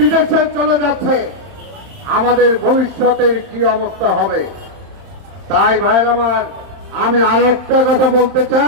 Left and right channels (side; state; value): left; late; 30 ms